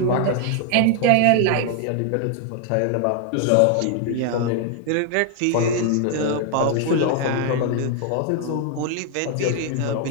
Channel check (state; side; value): different; both; correlation 0.00